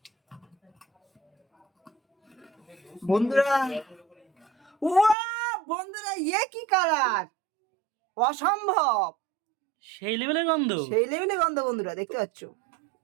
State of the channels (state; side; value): drops out; left; at 5.2 s